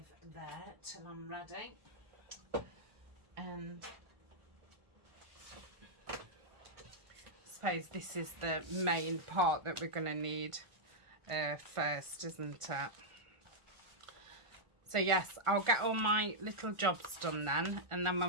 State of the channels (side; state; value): left; late; 1.4 ms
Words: there till I'm ready. And I suppose this is the main part that we're going to need first, isn't it? So yes, I'll get all my little jobs done then, and then